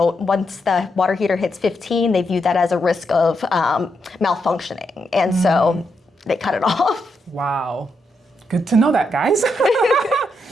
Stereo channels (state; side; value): normal; both; correlation 0.82